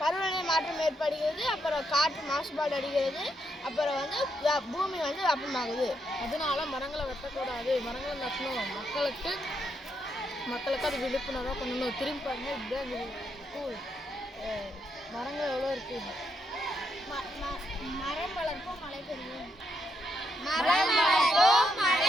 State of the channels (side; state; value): both; normal; correlation 0.79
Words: மாற்றம் ஏற்படுகிறது. அப்புறம் காற்று மாசுபாடு அடைகிறது. அப்புறம் பூமி வெப்பமாகுது. அதனால மரங்களை வெட்டக்கூடாது, மரங்களை நட்டணும். மக்களுக்கு அது விழிப்புணர்வாக பண்ணணும். திரும்பி பாருங்க, இப்படிதான் ஸ்கூல் மரங்கள் எவ்வளோ இருக்கு. மரம் வளர்ப்போம், மழை பெறுவோம். மரம் வளர்ப்போம்,